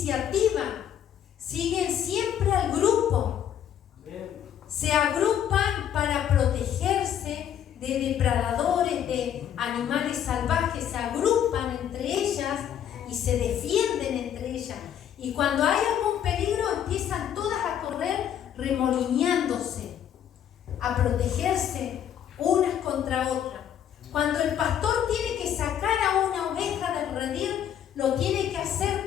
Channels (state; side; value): quieter; right; 9.7 dB